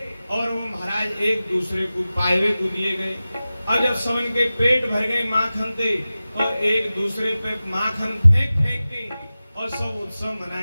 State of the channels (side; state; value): both; inverted; correlation -0.95